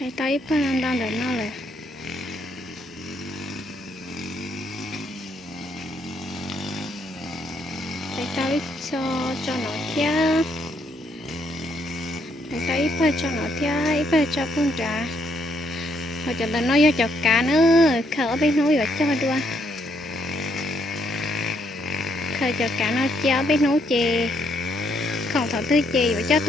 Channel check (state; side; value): normal; both; correlation 0.73